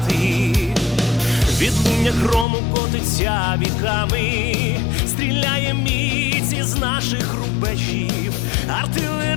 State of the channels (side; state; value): right; drops out; at 2.5 s